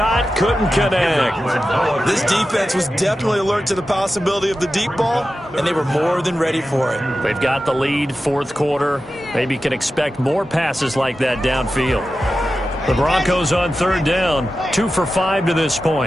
couldn't connect. This defense was definitely alert to the possibility of the deep ball, and they were more than ready for it. They've got the lead, fourth quarter. Maybe can expect more passes like that downfield. The Broncos on 3rd down, 2 for 5 to this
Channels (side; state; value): both; normal; correlation 0.93